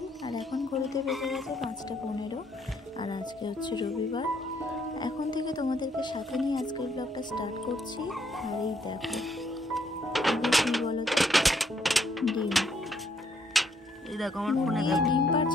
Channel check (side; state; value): both; normal; correlation 0.70